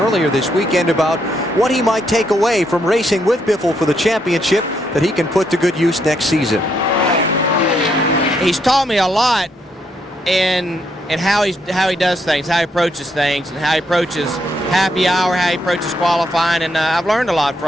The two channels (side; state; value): both; normal; correlation 0.76